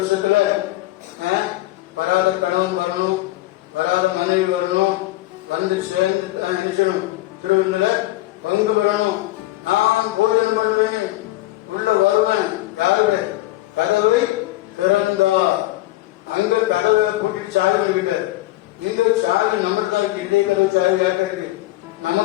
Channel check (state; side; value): quieter; right; 17.6 dB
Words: வராத கணவன் வரணும், வராத மனைவி வரணும், வந்து சேர்ந்து நினைச்சணும், திருவிழா பங்கு பெறணும். நான் போஜனம் பண்ணுவேன், உள்ள வருவேன். யாருடைய கதவை திறந்தா? அங்க கதவை பூட்டிட்டு சாவி வைக்கிட்ட, இங்க சாவி நம்ம தான் இருக்கு. இன்றைய கதவு சாவி யார்கிட்ட இருக்கு?